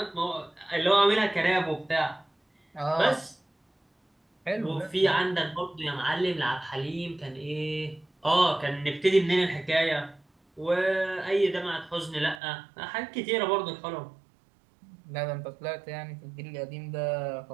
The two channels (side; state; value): left; drops out; at 12.4 s